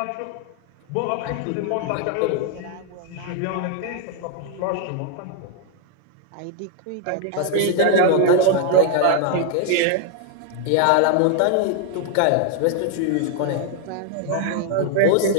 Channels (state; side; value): different; both; correlation 0.00